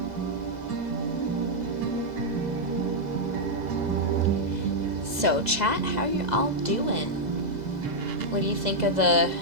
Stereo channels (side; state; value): left; late; 2.0 ms